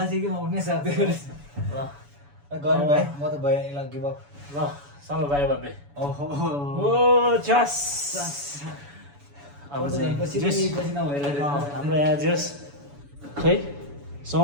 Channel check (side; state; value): left; late; 7.0 ms